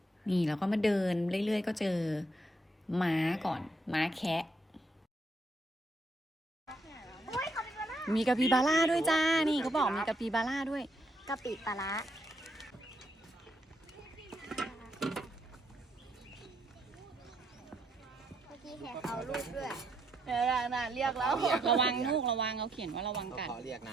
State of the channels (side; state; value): both; normal; correlation 0.74